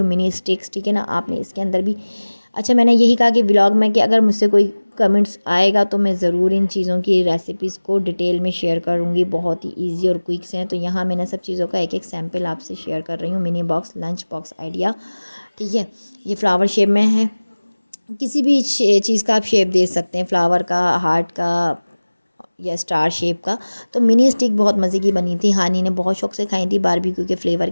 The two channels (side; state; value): both; inverted; correlation -1.00